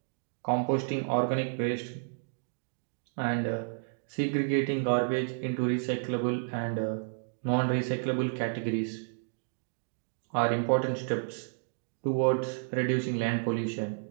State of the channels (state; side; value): silent; left; digital silence